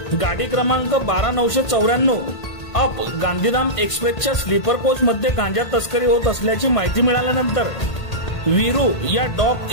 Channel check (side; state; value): right; late; 1.8 ms